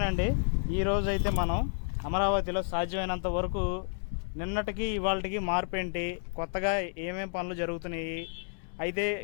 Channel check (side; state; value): right; silent; digital silence